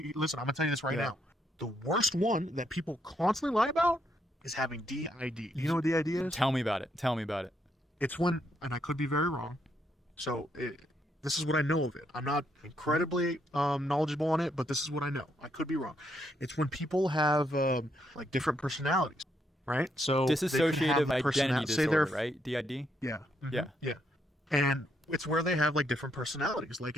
Listen, I'm gonna tell you this right now. The worst one that people constantly lie about is having DID. Do you know what DID is? Tell me about it. It's when, and I could be very wrong, so this is what I know of it. I'm not incredibly knowledgeable on it, but this is what I know. I could be wrong. It's when people have like different personalities, right? So Dissociative identity disorder, right? DID? Yeah. Yeah. Yeah. And it's where they have like different personalities. Like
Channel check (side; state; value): both; normal; correlation 0.76